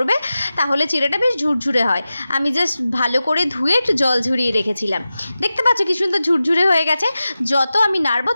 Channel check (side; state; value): both; inverted; correlation -0.94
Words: তাহলে চিড়েটা বেশ ঝুরঝুরে হয়। আমি জাস্ট ভালো করে ধুয়ে একটু জল ঝরিয়ে রেখেছিলাম। দেখতে পাচ্ছ কি সুন্দর ঝুরঝুরে হয়ে গেছে। যত আমি নাড়বো